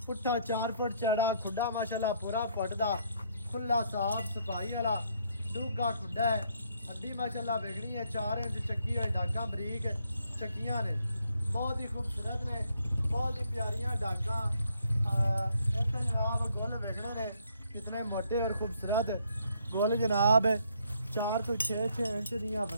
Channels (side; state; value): both; inverted; correlation -0.69